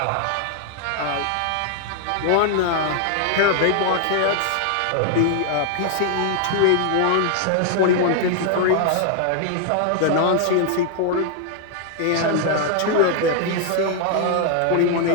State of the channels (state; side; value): different; both; correlation 0.00